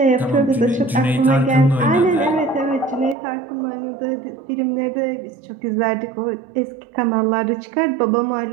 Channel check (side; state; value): left; drops out; at 3.2 s